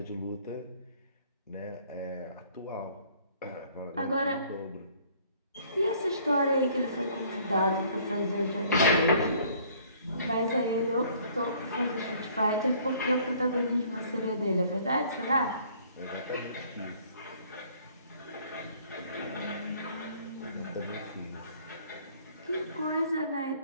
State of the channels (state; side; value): inverted; both; correlation -0.58